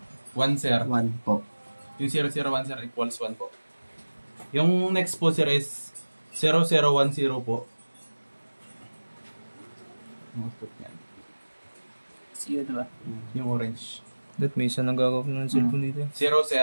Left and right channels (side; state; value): both; inverted; correlation -1.00